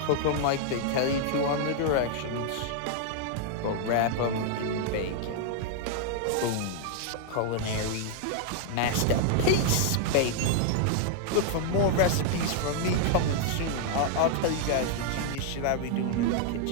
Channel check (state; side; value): different; both; correlation -0.01